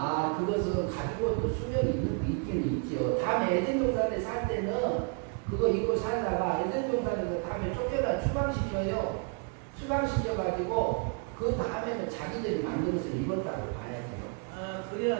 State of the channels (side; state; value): left; quieter; 36.8 dB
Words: 그것은 가지고 또 수명이 있긴 있지요. 다음에 에덴 동산에 살 때는 그거 입고 살다가 에덴 동산에서 다음에 쫓겨나 추방시켜요. 추방시켜가지고 그 다음에는 자기들이 만들어서 입었다고 봐야죠. 아